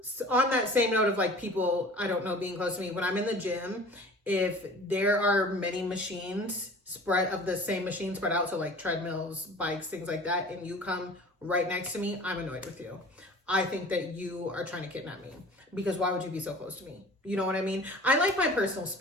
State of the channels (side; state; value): both; normal; correlation 0.43